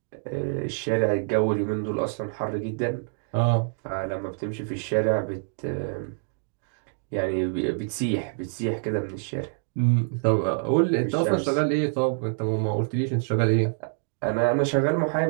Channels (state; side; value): silent; left; digital silence